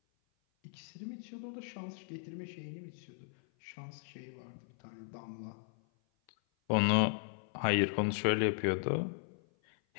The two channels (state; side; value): silent; right; 53 dB below the other